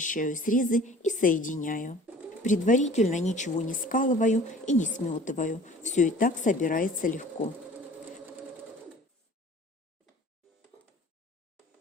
срезы и соединяю. Предварительно ничего не скалываю и не сметываю, все и так собирается легко.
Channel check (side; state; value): both; normal; correlation 0.48